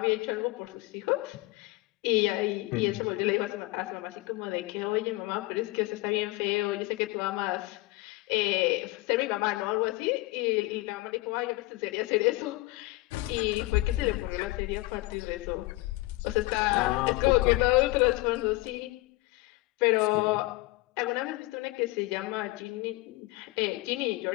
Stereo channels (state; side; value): quieter; right; 21.2 dB